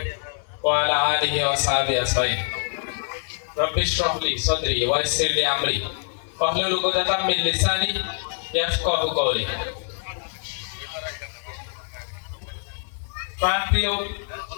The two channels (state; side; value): silent; right; digital silence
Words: ওয়া আলা আলিহি ওয়া সাহবিহি আজমাইন। রব্বি ইশরাহ লি সাদরি ওয়া ইয়াসসির লি আমরি ওয়াহলুল উকদাতাম মিন লিসানি ইয়াফকাহু কওলি। প্রাণপ্রিয়